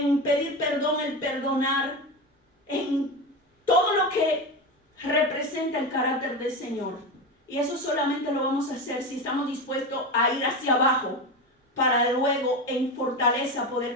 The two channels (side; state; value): both; normal; correlation 0.20